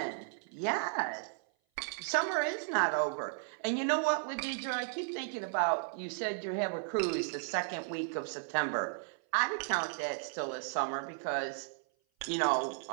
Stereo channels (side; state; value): left; silent; 55 dB below the other